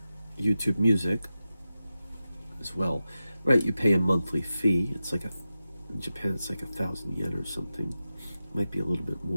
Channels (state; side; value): inverted; both; correlation -0.92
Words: Music as well, right? You pay a monthly fee. It's like in Japan it's like 1,000 yen or something. Might be a little bit